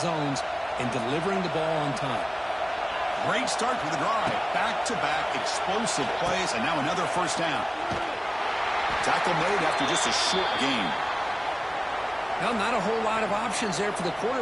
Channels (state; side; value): identical; both; correlation 1.00